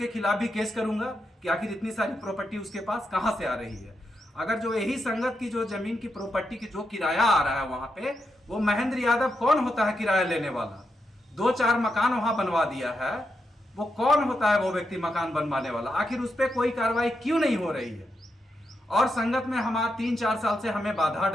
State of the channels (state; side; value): normal; both; correlation 0.85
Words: खिलाफ भी केस करूंगा कि आखिर इतनी सारी प्रॉपर्टी उसके पास कहां से आ रही है। अगर जो यही संगत की जो जमीन की प्रॉपर्टी की जो किराया आ रहा है वहां पे, वो महेंद्र यादव कौन होता है किराया लेने वाला? 2-4 मकान वहां बनवा दिया है, वो कौन होता है वो व्यक्ति मकान बनवाने वाला? आखिर उस पर कोई कार्रवाई क्यों नहीं हो रही है? और संगत में हमारा 3-4 साल से हमें बाधा